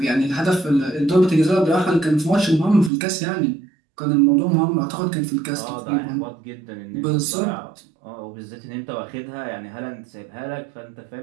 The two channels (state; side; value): drops out; left; at 2.9 s